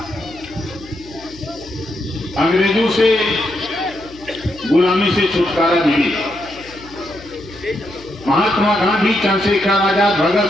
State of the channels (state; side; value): noise; left; hum, 20 dB below the sound